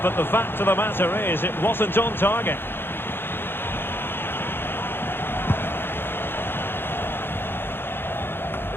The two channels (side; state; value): right; late; 0.10 ms